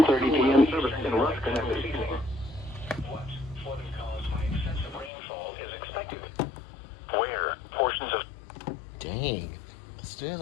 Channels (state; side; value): drops out; right; at 5.1 s